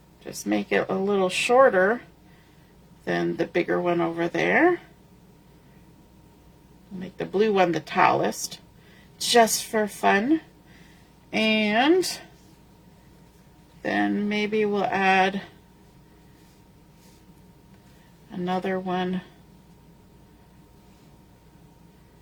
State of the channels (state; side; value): identical; both; correlation 1.00